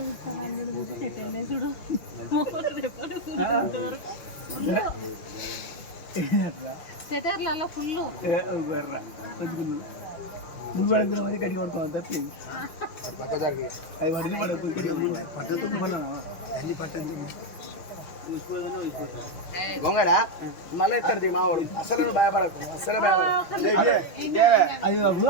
సెటర్లలో ఫుల్ ముందు పడుకున్న మరి గట్టిగా పడుకోవాలి తప్పి అవి పడితే పడకు. గొంగడా మళ్ళీ ఎత్తాడు మా వాడు. అసలు నువ్వు భయపడకు, అసలు భయపడకు. అది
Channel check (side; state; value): right; late; 6.1 ms